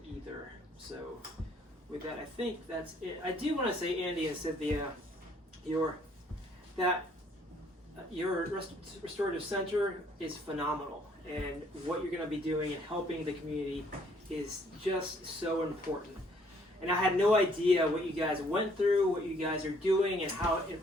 either. So with that, I think that's it. I do want to say, Andy and Cynthia, your restorative center is phenomenal. And what you're going to be doing and helping the community is just so important. And I had no idea what you guys went through, what you guys are doing, and how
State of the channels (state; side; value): normal; both; correlation 0.64